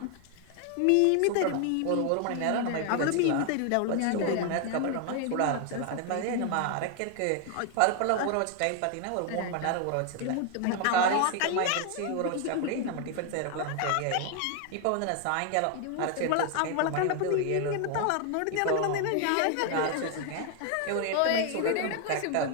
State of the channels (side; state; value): both; different; correlation 0.00